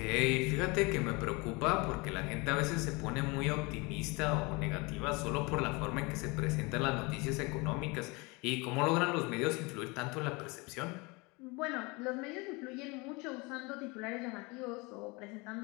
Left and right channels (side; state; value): right; quieter; 26.7 dB